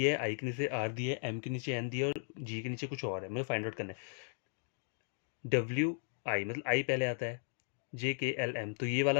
है, आई के नीचे आर दिया है, एम के नीचे एन दिया है, और जी के नीचे कुछ और है, मुझे फाइंड आउट करना है। डब्ल्यू आई मतलब आई पहले आता है, जे के एल एम। तो ये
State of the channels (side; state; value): right; silent; digital silence